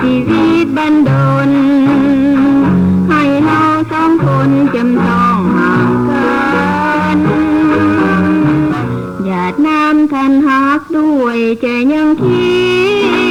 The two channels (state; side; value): identical; both; correlation 1.00